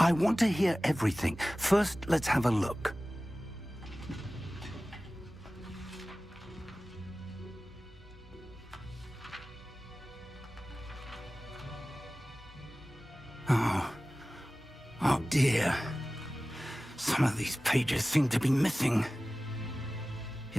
want to hear everything. First, let's have a look. Oh dear. Some of these pages seem to be missing.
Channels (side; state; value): both; normal; correlation 0.97